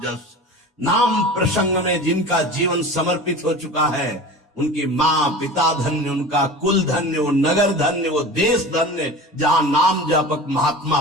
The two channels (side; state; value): both; normal; correlation 0.35